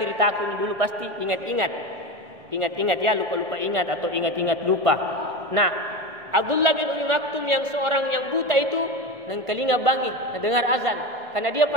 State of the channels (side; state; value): left; late; 1.4 ms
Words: aku ini dulu pasti ingat-ingat ya, lupa-lupa ingat atau ingat-ingat lupa. Nah, Abdullah bin Ummi Maktum yang seorang yang buta itu nang telinga bangi, dengar azan. Karena dia